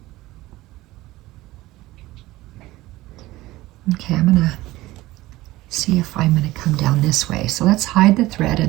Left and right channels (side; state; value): left; quieter; 17.9 dB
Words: okay, I'm going to see if I'm going to come down this way. So let's hide the thread